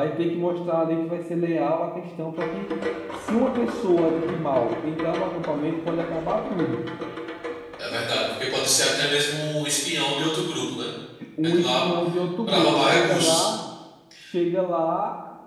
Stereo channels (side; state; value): both; identical; correlation 1.00